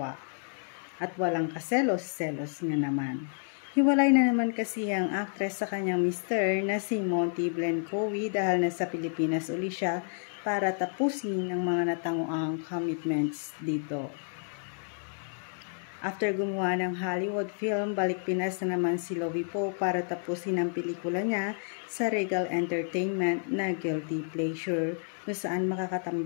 At walang kaselos-selos nga naman. Hiwalay na naman kasi ang actress sa kanyang mister na si Monty Blencowe dahil nasa Pilipinas uli siya para tapusin ang mga natanguang commitments dito. After gumawa ng Hollywood film, balik Pinas na naman si Lovie po para tapusin ang pelikula niya sa Regal Entertainment na Guilty Pleasure, kung saan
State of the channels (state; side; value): silent; right; 58 dB below the other